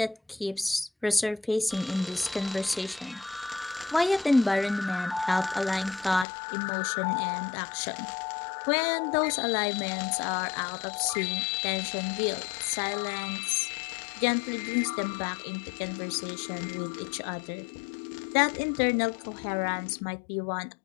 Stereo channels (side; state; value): right; drops out; at 6.2 s